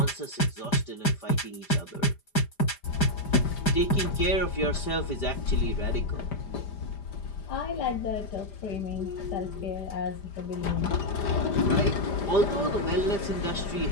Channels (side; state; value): right; late; 5.0 ms